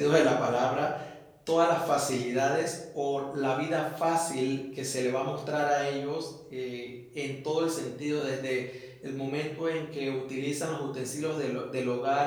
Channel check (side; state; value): both; identical; correlation 1.00